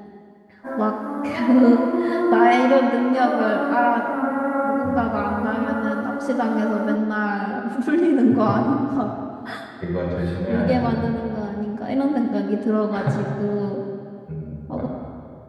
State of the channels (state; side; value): identical; both; correlation 1.00